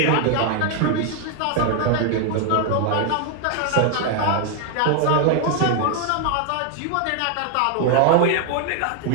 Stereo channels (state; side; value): different; both; correlation 0.00